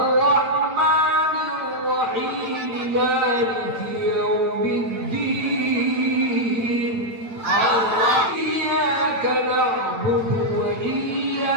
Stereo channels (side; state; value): left; late; 9.1 ms